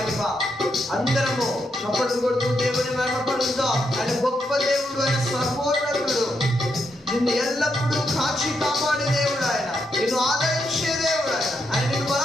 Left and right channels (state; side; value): normal; both; correlation 0.81